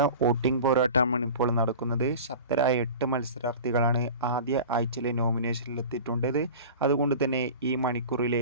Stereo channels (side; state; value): both; inverted; correlation -0.36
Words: വോട്ടിംഗ് പോരാട്ടമാണ് ഇപ്പോൾ നടക്കുന്നത്. ശക്തരായ 8 മത്സരാർത്ഥികളാണ് ആദ്യ ആഴ്ചയിലെ നോമിനേഷനിലെത്തിയിട്ടുള്ളത്. അതുകൊണ്ട് തന്നെ ഈ മണിക്കൂറിലെ